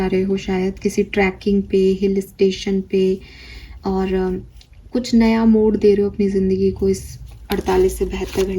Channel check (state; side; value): identical; both; correlation 1.00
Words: रहे हो, शायद किसी ट्रैकिंग पे, हिल स्टेशन पे, और कुछ नया मोड़ दे रहे हो अपनी ज़िंदगी को, इस 48 से 72